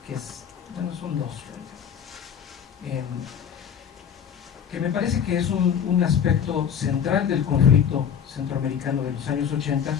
que es, bueno, son dos, que me parece que es un aspecto central del conflicto centroamericano de los años 80,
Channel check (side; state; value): right; quieter; 8.0 dB